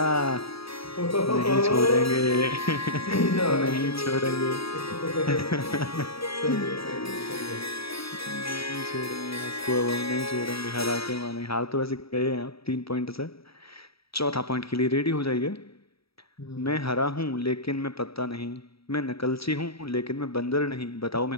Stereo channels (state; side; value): late; right; 0.76 ms